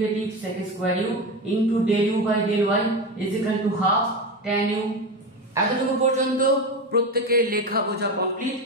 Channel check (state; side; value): normal; both; correlation 0.20